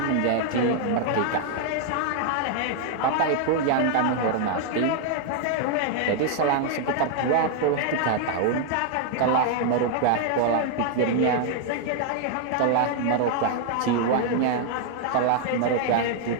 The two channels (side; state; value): both; different; correlation 0.00